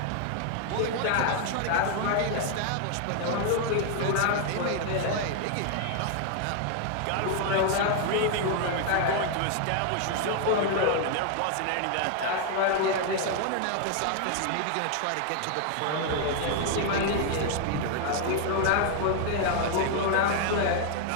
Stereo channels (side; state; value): both; different; correlation 0.00